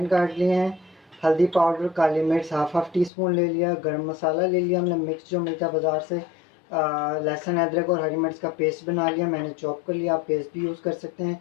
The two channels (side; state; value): right; drops out; at 3.1 s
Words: काट लिए हैं, हल्दी पाउडर, काली मिर्च हाफ टी स्पून ले लिया, गरम मसाला ले लिया हमने मिक्स जो मिलता है बाज़ार से, लहसुन अदरक और हरी मिर्च का पेस्ट बना लिया, मैंने चॉप कर लिया, आप पेस्ट भी यूज़ कर सकते